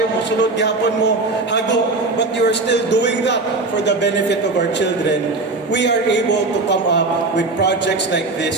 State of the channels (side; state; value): left; quieter; 3.4 dB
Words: musulod gihapon mo, hago, but you are still doing that for the benefit of our children. We are able to come up with projects like